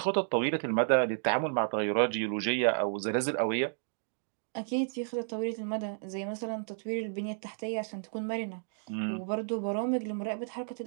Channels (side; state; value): left; silent; digital silence